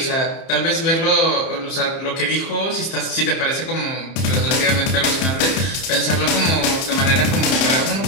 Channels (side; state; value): right; late; 30 ms